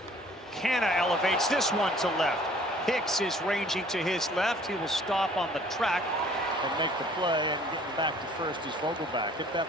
Canha elevates this one to left. Hicks is ranging to his left. He will stop on the track and make the play, and getting back to first is Vogelback. Hit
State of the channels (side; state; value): both; normal; correlation 0.55